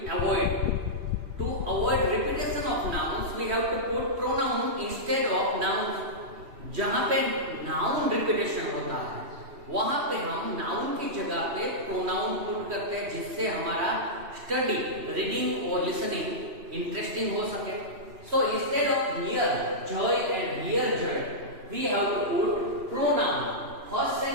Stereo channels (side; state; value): left; late; 3.1 ms